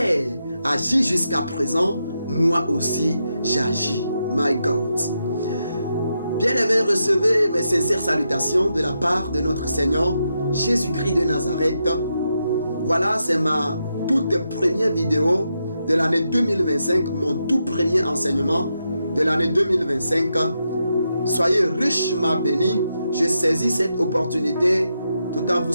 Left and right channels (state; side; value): inverted; both; correlation -0.84